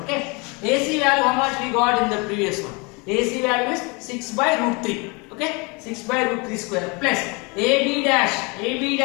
Okay. AC value how much we got in the previous one? AC value is 6 by root 3. Okay. 6 by root 3 square plus AB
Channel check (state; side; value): quieter; right; 29.4 dB